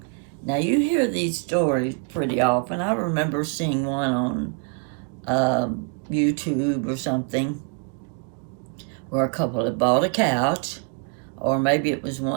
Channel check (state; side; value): quieter; left; 34.7 dB